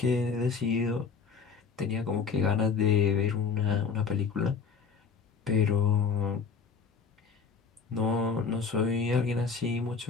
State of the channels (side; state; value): right; quieter; 5.6 dB